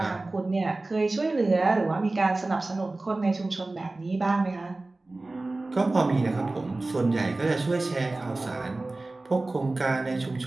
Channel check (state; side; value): quieter; left; 3.0 dB